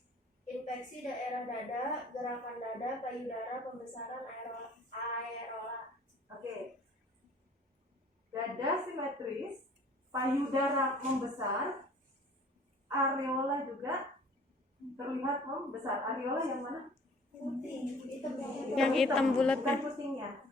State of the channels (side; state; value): both; normal; correlation 0.52